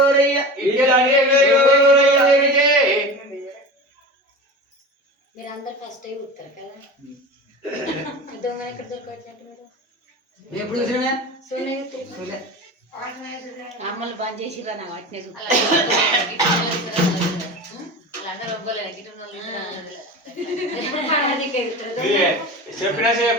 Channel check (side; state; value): both; normal; correlation 0.31